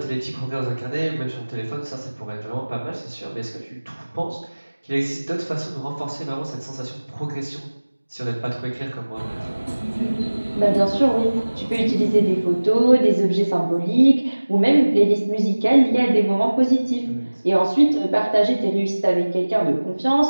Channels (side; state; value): both; inverted; correlation -1.00